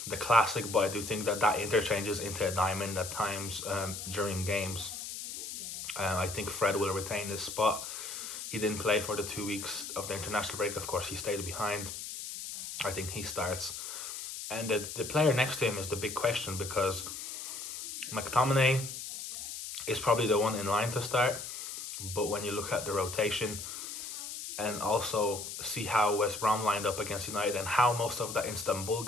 the classic, but I do think that interchanges into a diamond at times during games. I think Fred will retain his spot. He didn't play for the 2 weeks of the international break. Of course, he stayed behind. I think he starts. And the player next to him is the big question, because McTominay is probably the one in line to start. But when you look at the rotation and also see how West Brom lined up against United and how most of that Istanbul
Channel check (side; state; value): left; noise; hiss, 7 dB below the sound